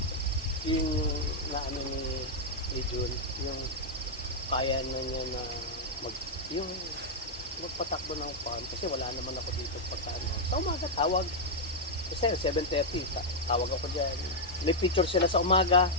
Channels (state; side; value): normal; both; correlation -0.03